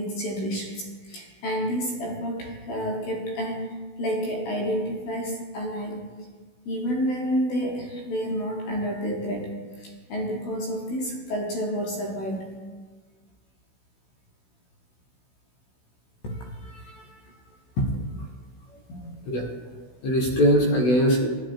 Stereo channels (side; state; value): right; late; 16 ms